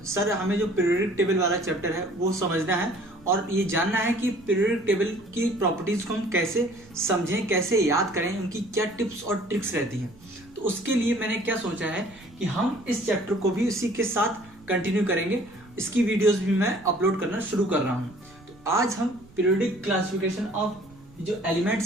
सर हमें जो पीरियोडिक टेबल वाला चैप्टर है वो समझना है और ये जानना है कि पीरियोडिक टेबल की प्रॉपर्टीज को हम कैसे समझें, कैसे याद करें, उनकी क्या टिप्स और ट्रिक्स रहती हैं। तो उसके लिए मैंने क्या सोचा है कि हम इस चैप्टर को भी उसी के साथ कंटिन्यू करेंगे। इसकी वीडियोस भी मैं अपलोड करना शुरू कर रहा हूँ। तो आज हम पीरियोडिक क्लासिफिकेशन ऑफ जो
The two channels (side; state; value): right; noise; rumble, 25 dB below the sound